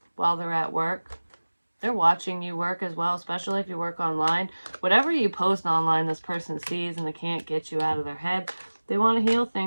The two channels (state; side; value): inverted; both; correlation -1.00